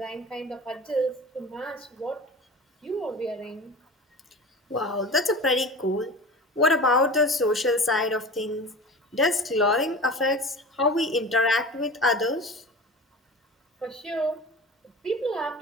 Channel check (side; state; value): both; normal; correlation 0.34